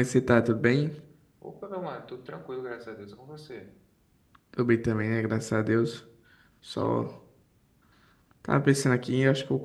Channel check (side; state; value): both; identical; correlation 1.00